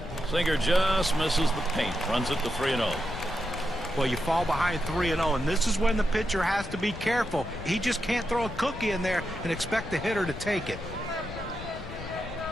Singer just misses the paint. Runs it to 3-0. Well, you fall behind 3-0, and this is when the pitcher has to be careful. He just can't throw a cookie in there and expect the hitter to take it.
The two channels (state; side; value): noise; left; rumble, 11 dB below the sound